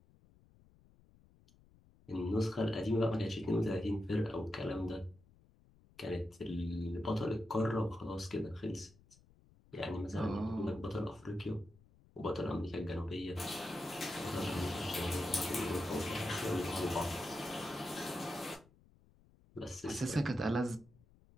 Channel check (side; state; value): left; noise; rumble, 27 dB below the sound